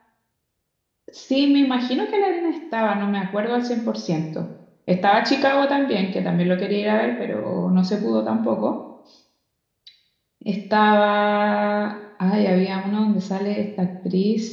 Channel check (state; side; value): identical; both; correlation 1.00